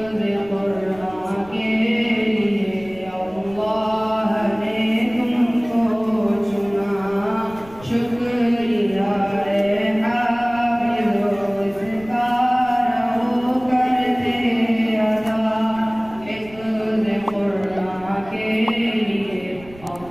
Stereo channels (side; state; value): right; noise; rumble, 21 dB below the sound